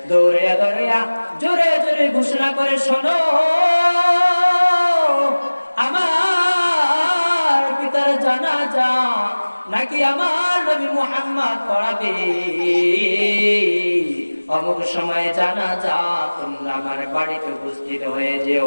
দৌড়াইয়া দৌড়াইয়া জোরে জোরে ঘোষণা করে, শোনো আমার পিতার জানাজা নাকি আমার নবী মুহাম্মদ পড়াবে, অমুক সময় জানাজা, তোমরা আমার বাড়িতে উপস্থিত হয়ে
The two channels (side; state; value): both; inverted; correlation -1.00